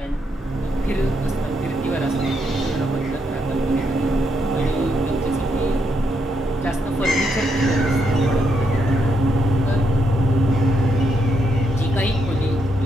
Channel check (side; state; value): both; normal; correlation 0.79